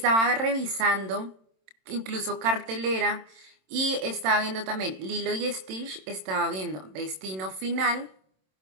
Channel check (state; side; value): late; left; 27 ms